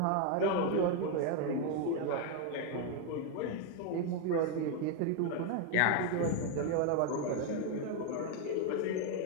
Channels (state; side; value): different; both; correlation 0.01